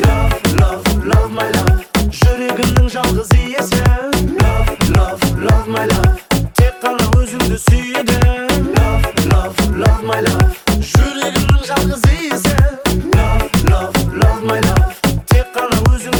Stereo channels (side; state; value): both; identical; correlation 1.00